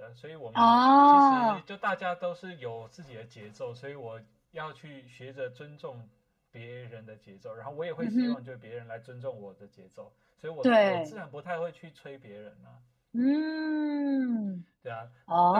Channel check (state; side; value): identical; both; correlation 1.00